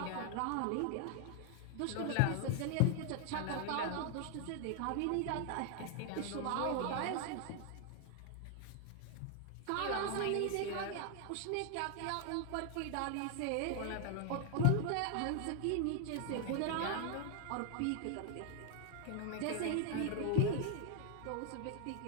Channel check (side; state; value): both; different; correlation 0.00